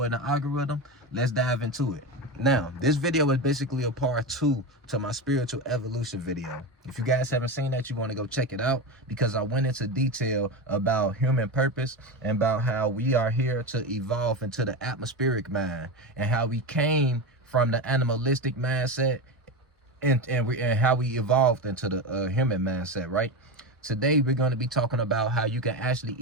in the algorithm. Let's dive into it. Now, this video is basically a part 2 to my spiritual evolution video. If you guys haven't seen that, you want to go check it out, because I went into detail about human purpose and about how we are here to evolve into the atmospheric mind, and how we came from the animalistic mindset and how we evolved into the human mindset, right? Today, we're going to be talking about how you can actually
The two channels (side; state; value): both; normal; correlation 0.19